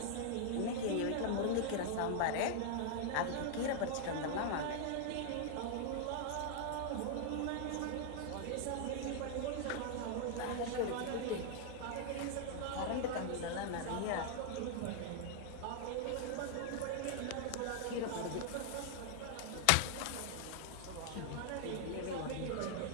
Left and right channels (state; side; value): different; both; correlation 0.00